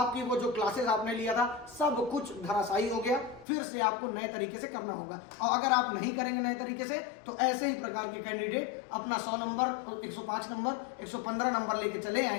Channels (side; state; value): right; drops out; at 3.5 s